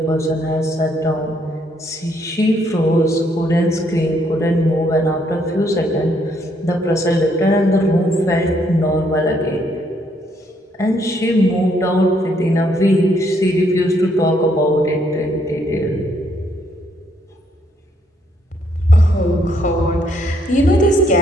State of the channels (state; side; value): normal; both; correlation 0.71